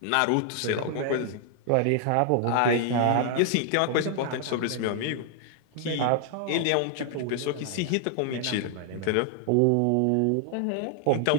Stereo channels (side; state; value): both; different; correlation 0.00